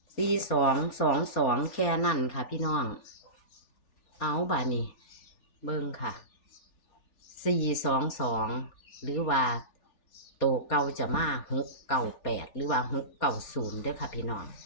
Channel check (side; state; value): right; late; 3.4 ms